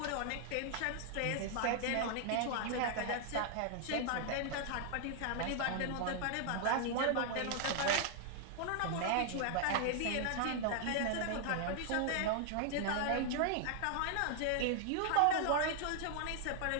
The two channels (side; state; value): both; different; correlation 0.00